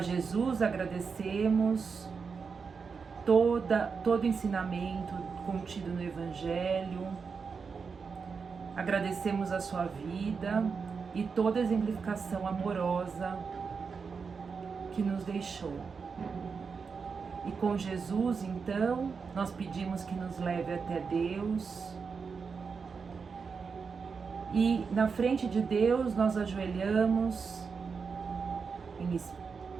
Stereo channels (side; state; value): left; quieter; 5.4 dB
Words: Jesus agradecemos todo ensinamento contido no Evangelho, agradecemos a sua vida e toda a exemplificação amorosa que nos deixou. E com Jesus, então, nós pedimos que nos leve até Deus. E na frente de Deus nós ajoelhamos